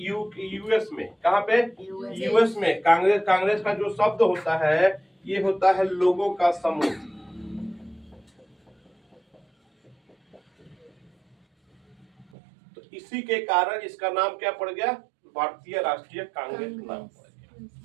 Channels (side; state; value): left; drops out; at 12.2 s